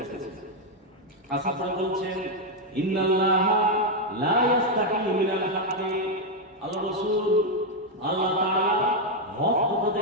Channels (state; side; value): normal; both; correlation 0.01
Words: এসেছে। আসাদ বলছেন ইন্নাল্লাহা লা ইস্তাহি মিনাল হাক্কি, আল্লাহ রাসূল আল্লাহ তাআলা হক কথা